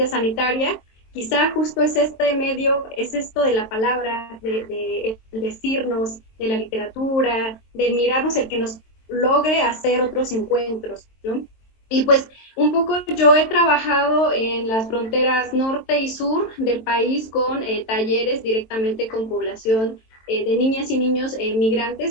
sanitaria, quizá justo es este medio, es esto de la palabra, de decirnos, de la literatura, de mirarnos, el que nos logre hacer otros encuentros, ¿no? Y pues un poco yo he trabajado en las fronteras norte y sur del país con talleres directamente con población de niñas y niños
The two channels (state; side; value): late; right; 23 ms